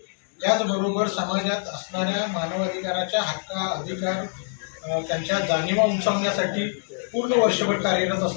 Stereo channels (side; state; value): right; silent; 62 dB below the other